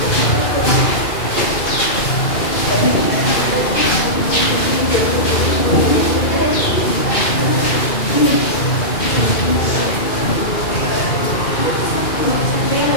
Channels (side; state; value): right; late; 2.4 ms